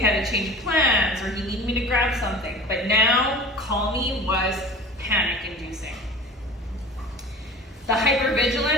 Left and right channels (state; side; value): normal; both; correlation 0.39